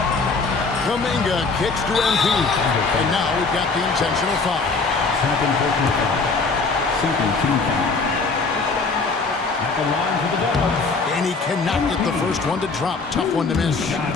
Kuminga kicks to MP. And now we've got the intentional foul. Second team foul. At the line for the Dubs. And he cannot get the first one to drop. Tough one to miss.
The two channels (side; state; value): right; quieter; 4.2 dB